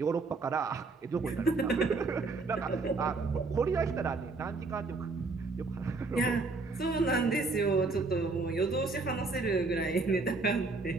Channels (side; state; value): left; quieter; 3.8 dB